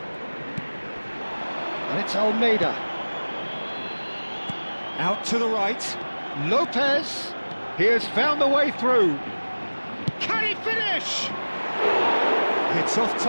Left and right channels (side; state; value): both; inverted; correlation -1.00